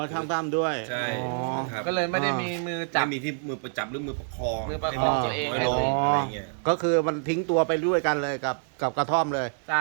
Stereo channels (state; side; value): silent; left; digital silence